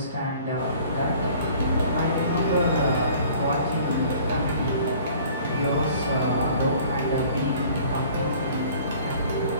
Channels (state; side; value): inverted; both; correlation -0.51